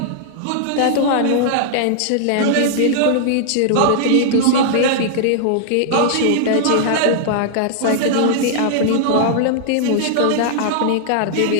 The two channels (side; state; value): both; different; correlation -0.01